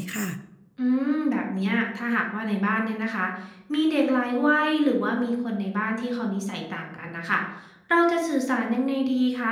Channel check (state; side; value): identical; both; correlation 1.00